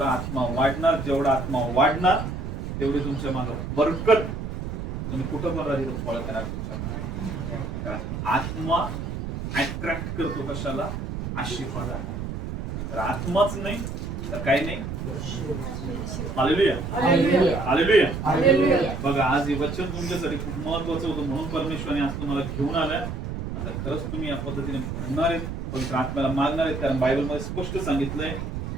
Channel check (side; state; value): right; noise; rumble, 5 dB below the sound